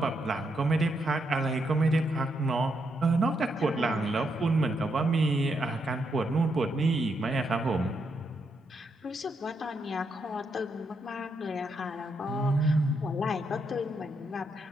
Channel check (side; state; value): both; normal; correlation 0.79